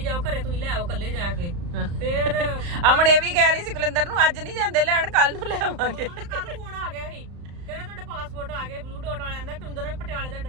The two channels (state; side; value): late; left; 35 ms